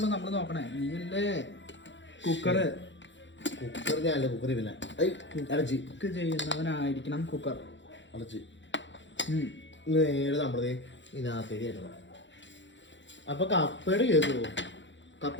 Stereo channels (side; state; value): right; late; 0.54 ms